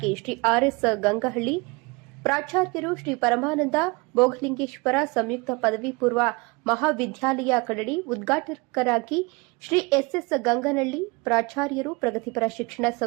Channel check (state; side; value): quieter; left; 26.5 dB